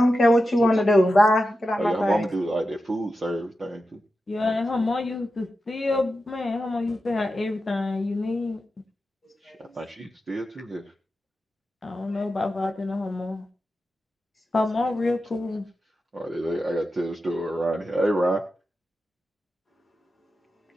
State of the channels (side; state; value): both; normal; correlation 0.91